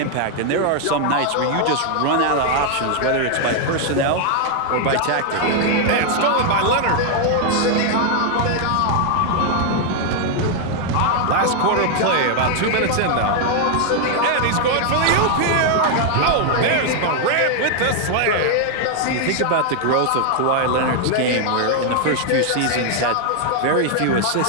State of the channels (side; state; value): both; different; correlation 0.00